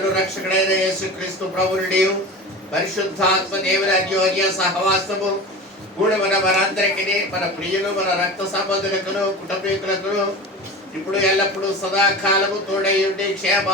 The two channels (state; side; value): normal; both; correlation 0.32